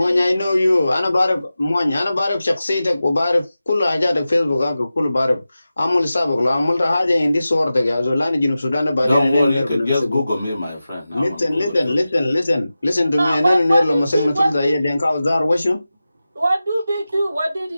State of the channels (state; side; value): inverted; both; correlation -0.94